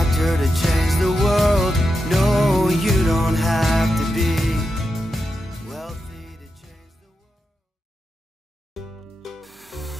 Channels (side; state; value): both; normal; correlation 0.88